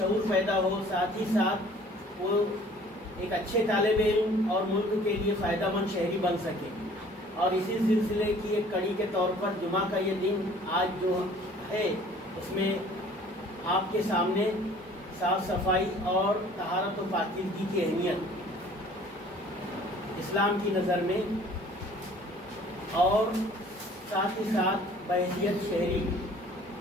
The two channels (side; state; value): both; normal; correlation 0.52